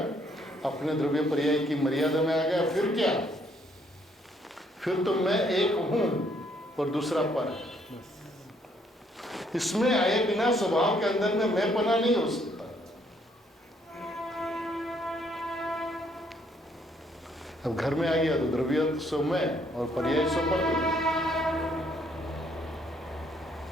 अपने द्रव्य पर्याय की मर्यादा में आ गया, फिर क्या? फिर तो मैं एक हूं और दूसरा पर है। इसमें आए बिना स्वभाव के अंदर में मैं पना नहीं हो सकता। अब घर में आ गया तो द्रव्य सो मैं और पर्याय सो पर।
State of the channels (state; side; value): normal; both; correlation 0.68